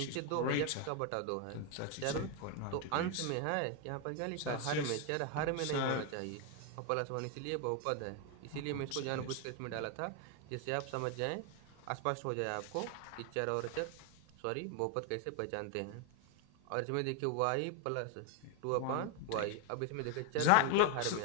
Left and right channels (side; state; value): both; different; correlation 0.01